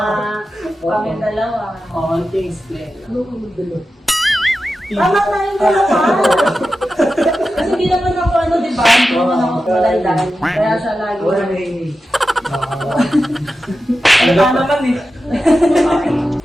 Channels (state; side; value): normal; both; correlation 0.92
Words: Kami dalawa. Konting explain. Tama tayong dalawa. Kasi hindi naman ako di ba? Hindi naman ako malandan. Kaya siya lagi. Tama naman eh.